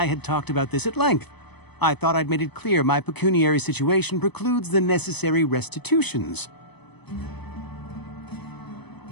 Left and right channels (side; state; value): right; late; 0.98 ms